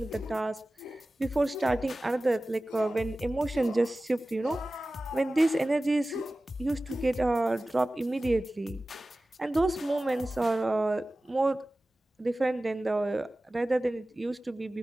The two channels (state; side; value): normal; both; correlation 0.96